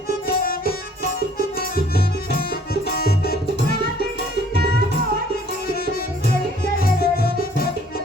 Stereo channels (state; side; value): normal; both; correlation 0.57